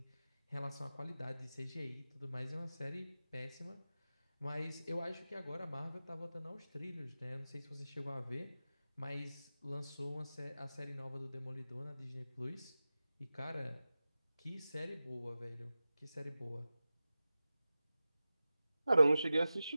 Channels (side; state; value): both; inverted; correlation -0.95